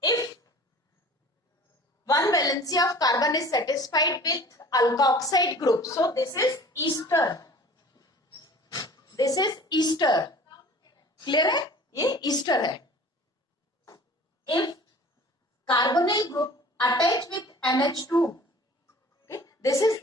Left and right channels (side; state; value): both; normal; correlation 0.45